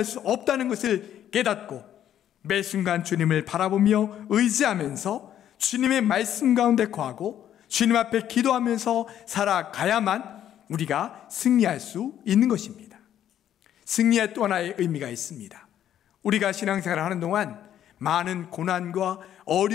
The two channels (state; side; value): quieter; right; 10.8 dB